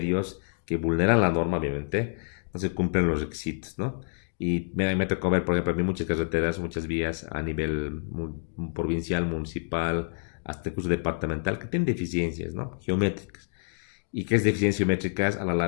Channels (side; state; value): right; silent; digital silence